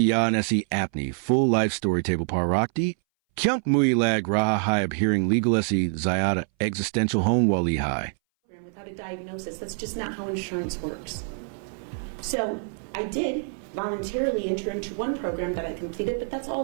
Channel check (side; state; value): left; silent; 60 dB below the other